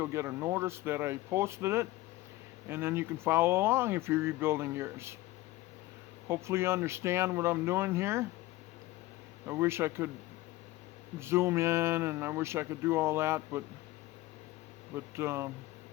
get a notice that I posted it, and then you can follow along if you're rebuilding yours. Hopefully you understand what I'm doing here. I wish I could zoom in, and I wish I could do all that, but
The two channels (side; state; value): right; quieter; 18.0 dB